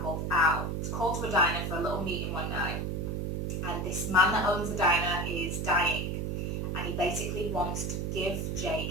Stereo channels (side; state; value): right; noise; hum, 1 dB below the sound